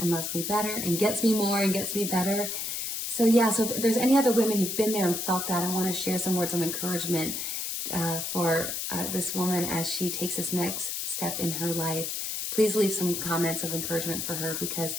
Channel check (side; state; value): left; noise; hiss, 3 dB below the sound